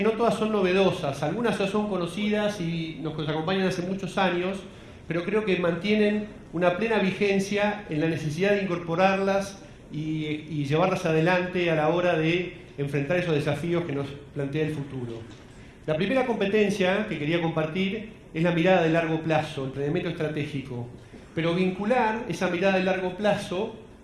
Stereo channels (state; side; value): identical; both; correlation 1.00